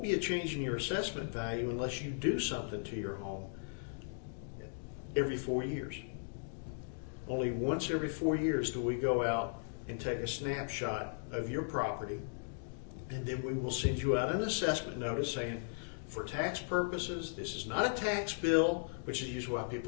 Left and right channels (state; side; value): silent; right; digital silence